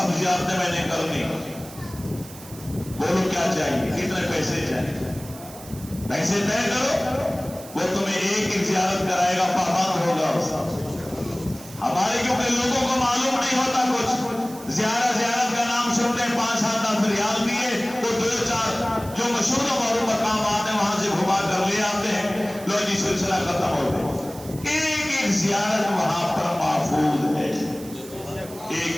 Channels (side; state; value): right; noise; hiss, 17 dB below the sound